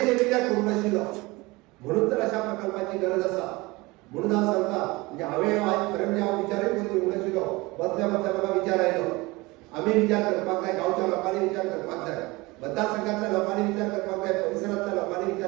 जे कित्याक करूंक नाशिल्लो. म्हणून तर अशा प्रकल्पाची गरज आसा. म्हणून हांव सांगता, म्हणजे हांवें आज खरें म्हणजे हांव विचारय करून येवंक नाशिल्लो. बसल्या बसल्या म्हाका विचार आयलो. आमी विचार करपाक जाय, गांवच्या लोकांनी विचार करपाक जाय, मतदारसंघातल्या लोकांनी विचार करपाक जाय, परिसरांतल्या लोकांनी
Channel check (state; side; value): quieter; left; 22.8 dB